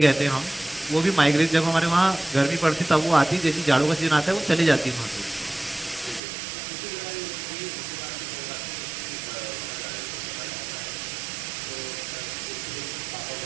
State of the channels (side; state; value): left; drops out; at 6.2 s